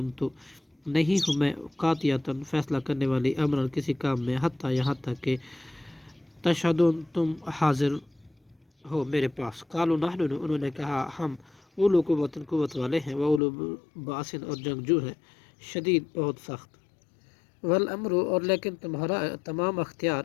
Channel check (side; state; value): right; drops out; at 13.4 s